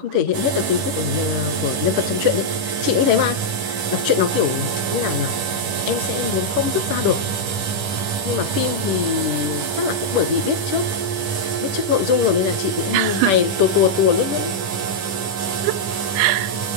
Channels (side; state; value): left; late; 10 ms